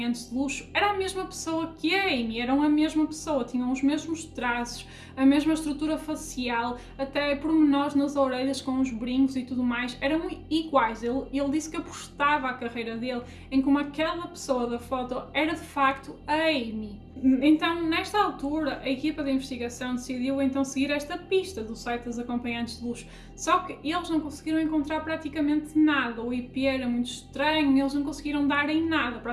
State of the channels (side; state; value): both; identical; correlation 1.00